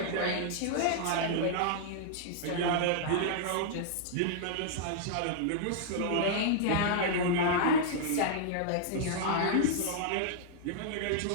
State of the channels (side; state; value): both; different; correlation -0.01